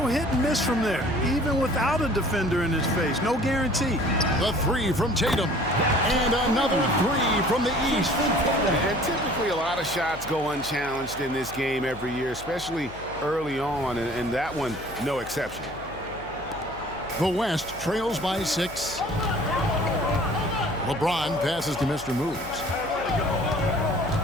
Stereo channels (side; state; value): left; noise; hum, 18 dB below the sound